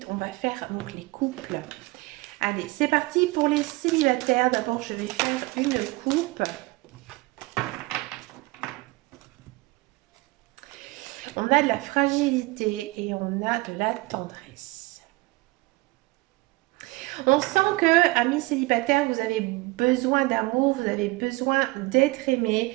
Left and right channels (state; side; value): quieter; left; 22.8 dB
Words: on va faire donc les couples. Allez, c'est parti pour les célibataires. D'abord, je vais faire une coupe. On a de la fragilité et on a de la tendresse. On sent que, amis célibataires, vous avez besoin d'amour, vous avez besoin d'être